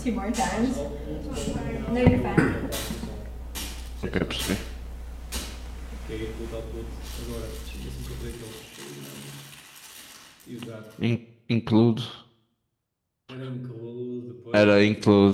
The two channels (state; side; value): identical; both; correlation 1.00